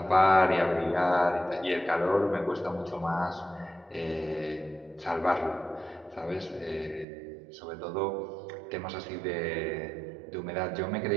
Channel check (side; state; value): left; drops out; at 7.1 s